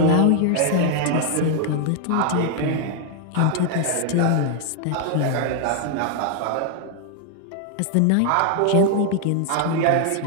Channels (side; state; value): both; different; correlation 0.00